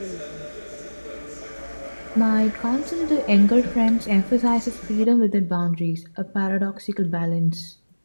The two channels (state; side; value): inverted; both; correlation -1.00